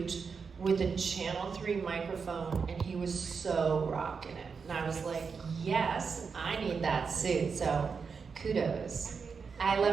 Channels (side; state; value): left; quieter; 5.5 dB